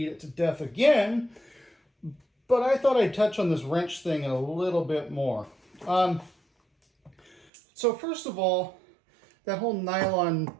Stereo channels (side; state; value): left; drops out; at 7.5 s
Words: it to death again, but I thought I'd touch on this wrench thing a little bit more. So first of all, that whole nylon